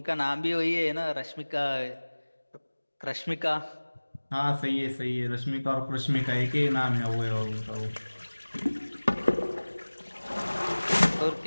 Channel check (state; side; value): inverted; both; correlation -1.00